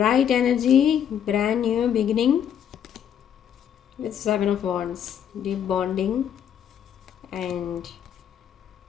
energy, brand new beginning with 7 of Wands. Deep bonding and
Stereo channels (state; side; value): quieter; right; 9.2 dB